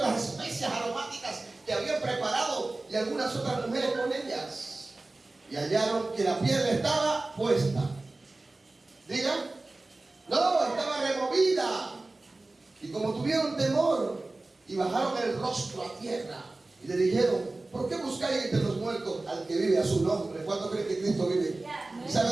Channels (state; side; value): quieter; left; 3.1 dB